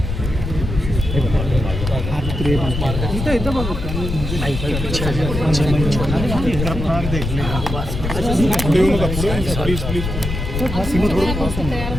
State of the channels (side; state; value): left; noise; rumble, 4 dB below the sound